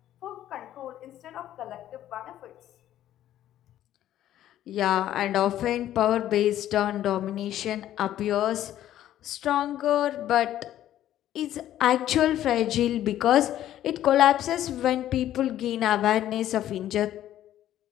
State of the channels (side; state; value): right; quieter; 12.4 dB